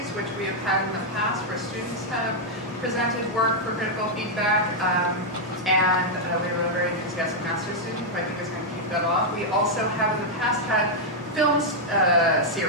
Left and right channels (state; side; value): normal; both; correlation -0.03